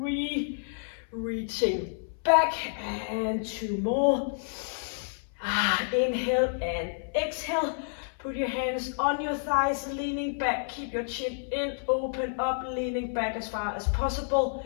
reaching back, and 2 more. Inhale and exhale. Put your hands on your thighs, leaning back. Keep your chin in, open up, leaning back as far as possible,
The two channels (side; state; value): right; silent; 58 dB below the other